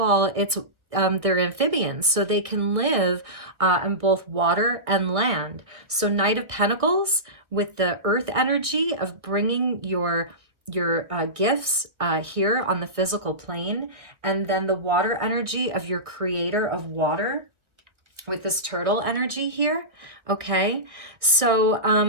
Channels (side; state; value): left; late; 1.4 ms